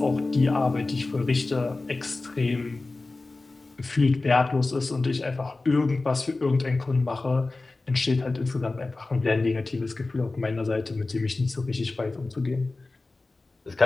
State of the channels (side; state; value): right; quieter; 3.3 dB